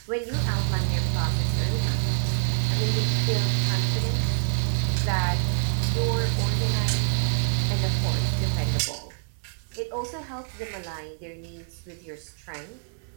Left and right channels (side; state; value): left; silent; 61 dB below the other